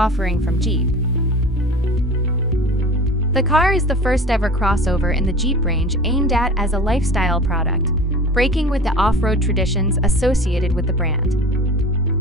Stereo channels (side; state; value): both; normal; correlation 0.39